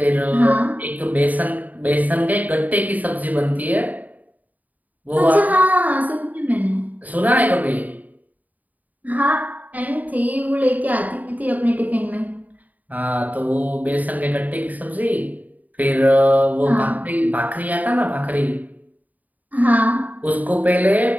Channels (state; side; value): late; left; 0.078 ms